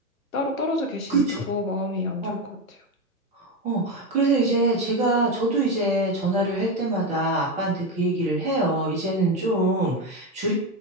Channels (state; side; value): normal; both; correlation 0.14